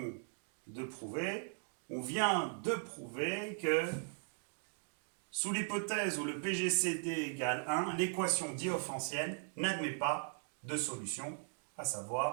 de prouver? On vient de prouver que sous l'hypothèse où le PGCD égale 1, l'équation différéntielle n'admet pas de solution, à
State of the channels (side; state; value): left; silent; 52 dB below the other